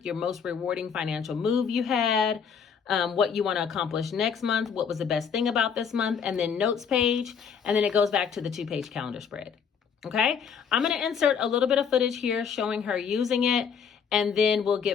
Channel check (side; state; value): right; quieter; 6.9 dB